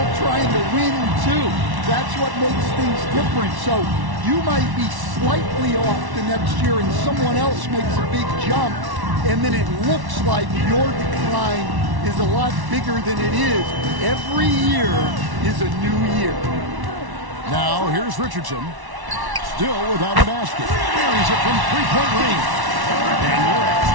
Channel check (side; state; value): left; late; 1.1 ms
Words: trying to win, too. That's what makes things different. So you might be slightly off the next year and someone else makes a big jump, and then it looks like your decline is a lot bigger than it is. Every year is a new year. Now, here's Richardson. Still without a basket. Buries it from three-point range. And you're